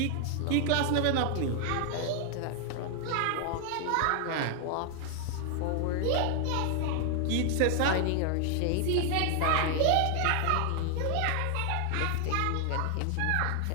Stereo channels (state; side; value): different; both; correlation 0.00